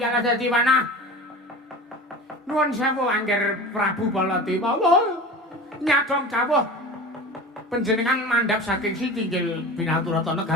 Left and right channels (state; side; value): normal; both; correlation 0.34